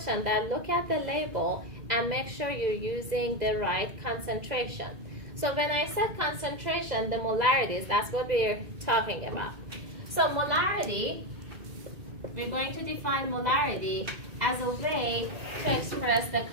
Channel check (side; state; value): left; late; 2.0 ms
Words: that look at the label and make sure you're using the right concentration. So when I said concentration, the molarities, that's what we're talking about. So molarity, we're going to define molarity as a way to express the